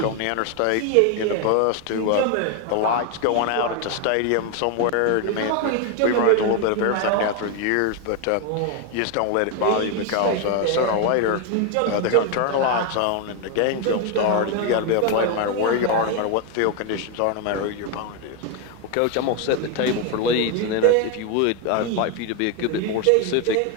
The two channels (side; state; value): both; different; correlation 0.01